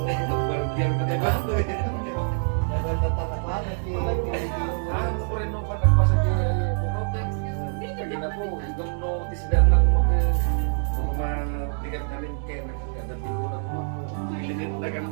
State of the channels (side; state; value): left; silent; digital silence